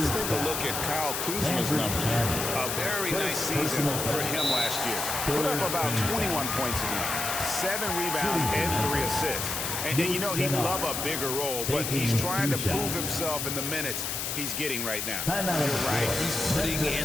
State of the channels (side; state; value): left; noise; hiss, 2 dB below the sound